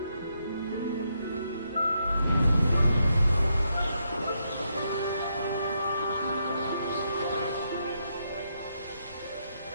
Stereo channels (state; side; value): inverted; both; correlation -0.79